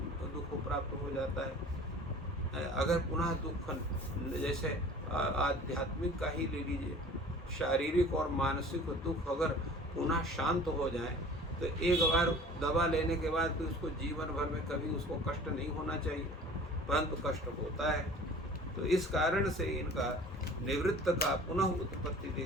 दुख प्राप्त हो जाता है। अगर पुनः दुख जैसे आध्यात्मिक का ही ले लीजिए, शारीरिक और मानसिक दुख अगर पुनः शांत हो जाए तो एक बार दवा लेने के बाद तो उसको जीवन भर में कभी उसको कष्ट नहीं होना चाहिए, परंतु कष्ट होता है। तो इस कारण से इनका निवृत्त का पुनः उत्पत्ति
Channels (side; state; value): both; normal; correlation 0.45